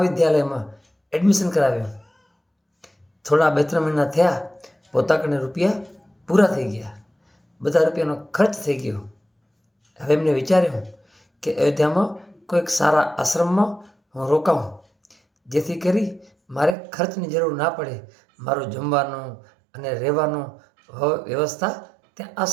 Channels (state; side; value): drops out; left; at 16.8 s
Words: એડમિશન કરાવ્યું. થોડા 2-3 મહિના થયા, પોતા કને રૂપિયા પૂરા થઈ ગયા, બધા રૂપિયાનો ખર્ચ થઈ ગયો. હવે એમને વિચાર્યું કે અયોધ્યામાં કોઈક સારા આશ્રમમાં હું રોકાઉં, જેથી કરી મારે ખર્ચની જરૂર ના પડે. મારું જમવાનું અને રહેવાનું વ્યવસ્થા ત્યાં